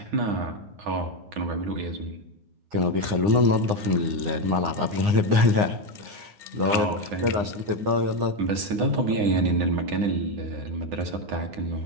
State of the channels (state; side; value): late; left; 9.7 ms